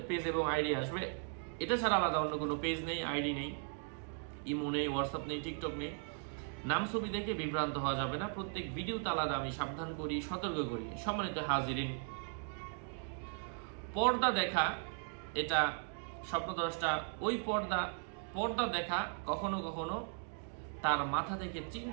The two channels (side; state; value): left; silent; 53 dB below the other